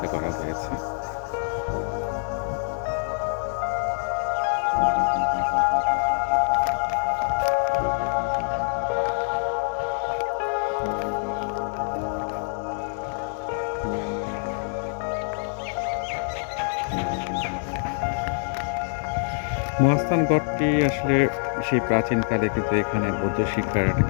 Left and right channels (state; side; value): silent; right; 59 dB below the other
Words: করা হয়েছে। মহাস্থানগড়টি আসলে সেই প্রাচীনকালে কিন্তু এখানে বৌদ্ধ শিক্ষার একটা